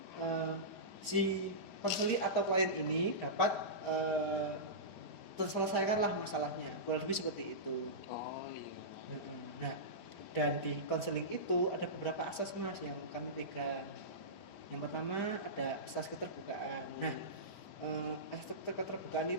si konseli atau klien ini dapat terselesaikanlah masalahnya. Kurang lebih seperti itu. Oh iya. Nah, dan di konseling itu ada beberapa asas Mas yang kami pegang. Yang pertama ada asas keterbukaan. Nah, asas keterbukaan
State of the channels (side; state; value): right; late; 4.4 ms